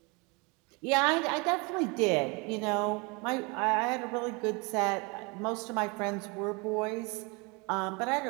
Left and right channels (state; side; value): quieter; left; 28.8 dB